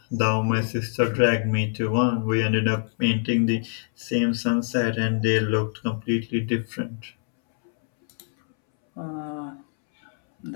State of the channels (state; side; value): silent; right; 62 dB below the other